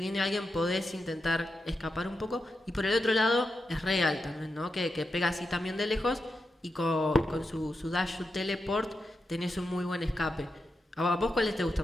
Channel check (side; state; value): both; normal; correlation 0.88